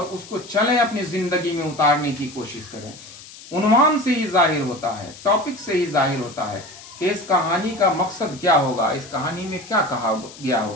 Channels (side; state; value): left; noise; hiss, 18 dB below the sound